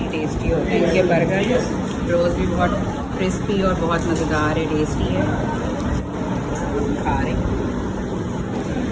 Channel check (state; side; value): identical; both; correlation 1.00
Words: टेस्टी होते हैं इनके बर्गर। रोज़ भी बहुत क्रिस्पी और बहुत मज़ेदार है, टेस्टी है। खा रहे हैं।